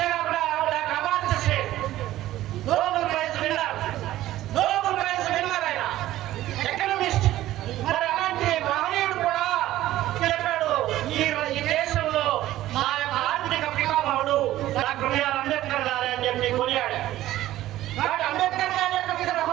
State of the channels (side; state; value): left; quieter; 14.7 dB